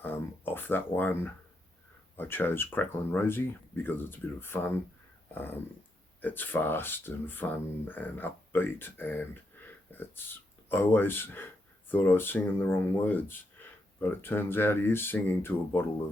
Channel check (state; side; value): normal; both; correlation 0.81